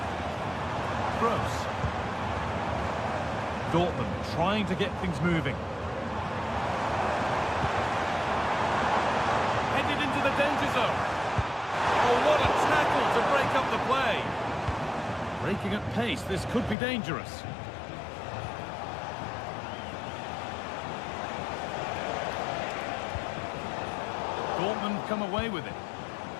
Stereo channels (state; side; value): drops out; right; at 16.8 s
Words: Gross. Dortmund trying to get things moving. Danger zone. Oh, what a tackle to break up the play. Breaking at pace, this could be dangerous. Dortmund come away with it.